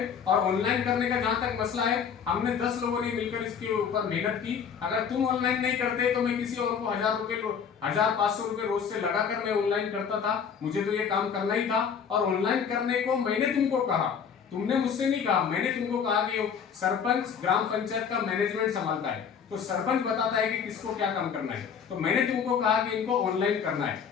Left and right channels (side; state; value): right; quieter; 7.0 dB